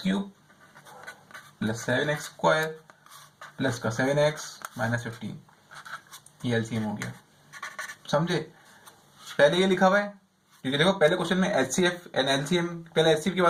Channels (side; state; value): both; identical; correlation 1.00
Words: cube plus 7x square plus का 7x माइनस 15, ये एलसीएम हो गया, समझे। पहले ये लिखा हुआ है क्योंकि देखो पहले क्वेश्चन में एचसीएफ एंड एलसीएम, पहले एचसीएफ की